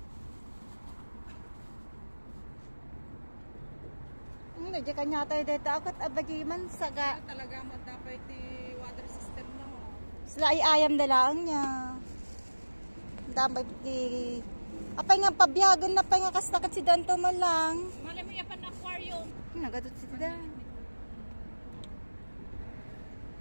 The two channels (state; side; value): inverted; both; correlation -1.00